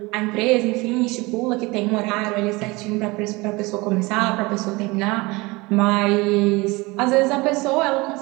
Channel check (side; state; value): left; quieter; 23.8 dB